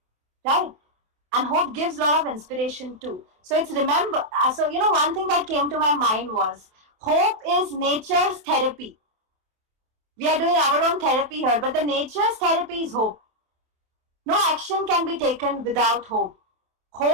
Right. And hope gives a lot of inspiration too. So it's one thing that came to my mind was hope is nature's therapy. We are doing our own therapy here, but the nature's therapy is hope. No action can be taken without hope.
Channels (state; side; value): late; left; 27 ms